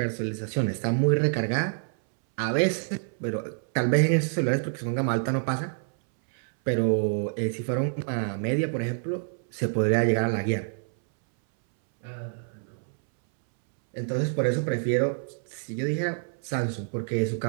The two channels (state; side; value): silent; left; 60 dB below the other